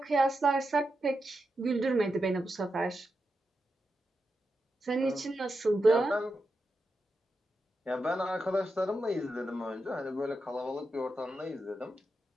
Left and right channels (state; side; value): normal; both; correlation 0.87